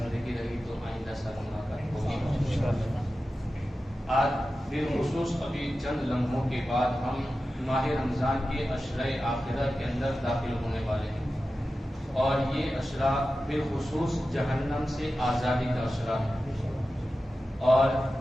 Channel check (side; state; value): both; normal; correlation 0.93